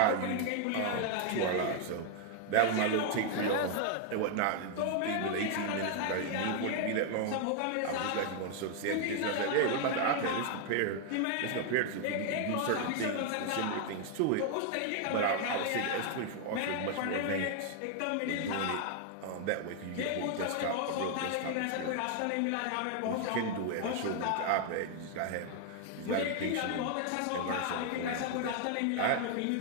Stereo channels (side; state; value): both; different; correlation 0.00